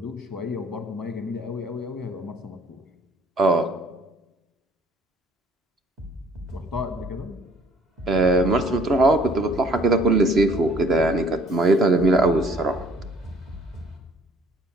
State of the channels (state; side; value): normal; both; correlation 0.58